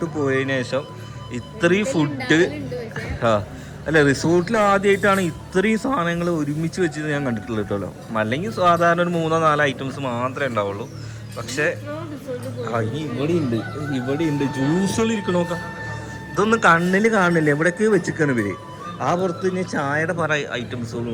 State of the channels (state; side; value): identical; both; correlation 1.00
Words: പോയതിനു ശേഷം ഇത്രയും ഫുഡ്. അല്ല, റിസോർട്ടിൽ ആദ്യമായിട്ടാണ് ഇത്രയും സാധനങ്ങൾ ഒരുമിച്ച് വെച്ചിട്ട് ഞാൻ കണ്ടിട്ടുള്ളത് കേട്ടോ. അല്ലെങ്കിൽ സാധാരണ ഒരു 3-4 ഐറ്റംസ് മാത്രമേ ഉണ്ടാവുള്ളൂ. പക്ഷേ ഇനി ഇവിടെ ഉണ്ട് ജ്യൂസുകൾ ഇരിക്കണ നോക്കാം. ഇതൊന്നും കണ്ണിൽ കാണില്ല, എവിടേക്ക് വെച്ചിരിക്കണം ഇവര്. ആ പുറത്ത് ഇനി ചായയുടെ പല ഐറ്റംസുകളും